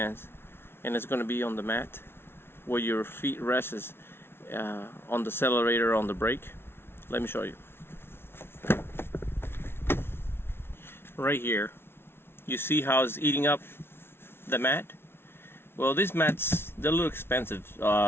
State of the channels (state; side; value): late; right; 0.12 ms